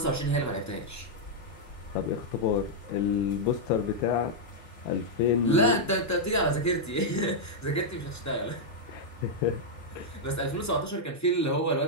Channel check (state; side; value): normal; both; correlation -0.05